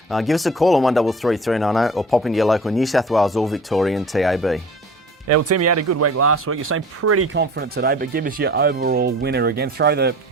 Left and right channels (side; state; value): both; normal; correlation 0.43